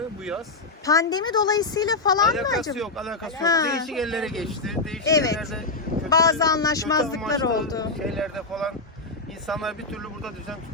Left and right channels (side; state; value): right; quieter; 3.5 dB